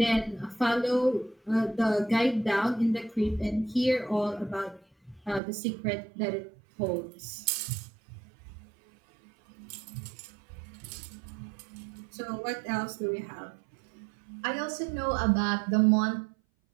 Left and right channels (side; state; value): left; drops out; at 5.4 s